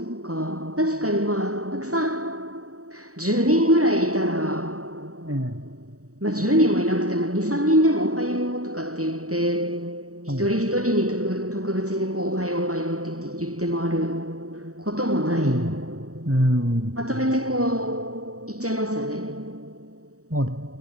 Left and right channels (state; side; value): late; left; 0.65 ms